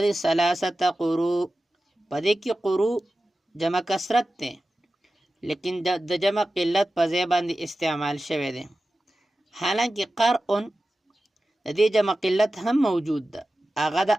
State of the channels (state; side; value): normal; both; correlation 0.94